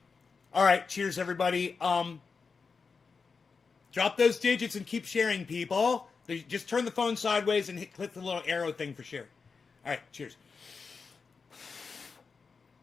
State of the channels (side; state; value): right; quieter; 5.0 dB